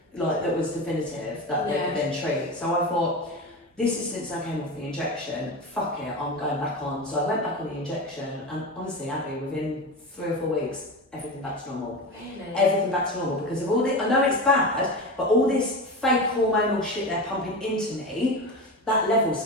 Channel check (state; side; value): normal; both; correlation 0.24